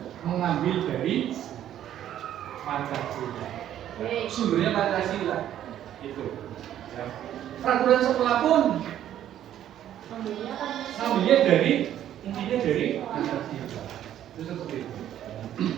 mengambil dari Pancasila. Sumbernya Pancasila itu. Ya. Peraturan sekolah pun ngambilnya dari intinya dari Pancasila. Itu seperti itu.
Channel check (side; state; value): left; quieter; 11.3 dB